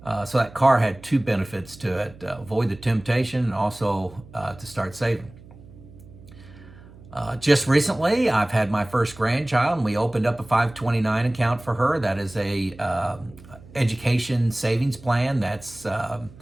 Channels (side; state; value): right; noise; hum, 21 dB below the sound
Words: So that car had 2 benefits to it: avoid the temptation, and also to start saving. Just recently, I've had my first grandchild, and we opened up a 529 account for her. That is a education savings plan that's